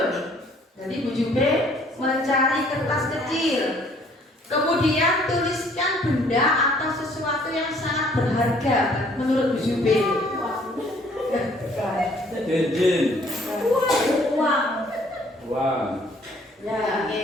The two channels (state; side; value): normal; both; correlation 0.60